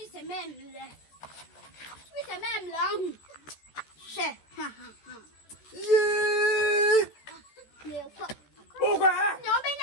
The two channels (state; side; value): late; right; 14 ms